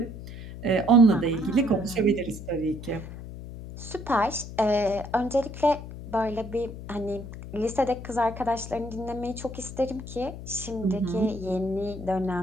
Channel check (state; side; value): noise; left; hum, 11 dB below the sound